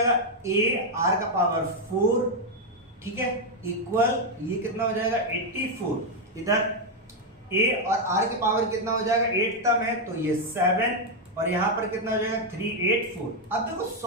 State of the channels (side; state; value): both; normal; correlation 0.02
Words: ए आर का पावर 4, ठीक है, इक्वल ये कितना हो जाएगा 84, इधर ए और आर के पावर कितना हो जाएगा 8 टर्म है तो ये 7, और यहां पर कितना हो जाएगा 384। अब देखो